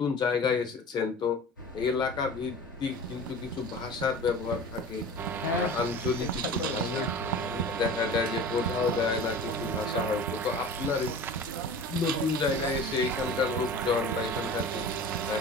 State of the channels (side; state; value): both; normal; correlation 0.37